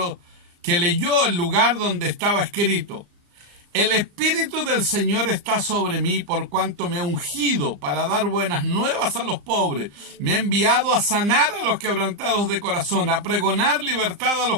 que leyó el lugar donde estaba escrito: el Espíritu del Señor está sobre mí, por cuanto me ha ungido para dar buenas nuevas a los pobres. Me ha enviado a sanar a los quebrantados de corazón, a pregonar libertad a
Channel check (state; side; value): late; left; 35 ms